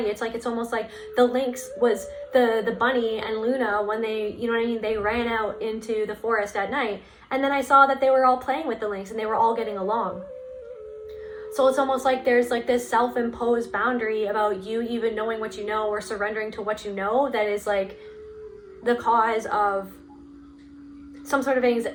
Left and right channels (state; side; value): identical; both; correlation 1.00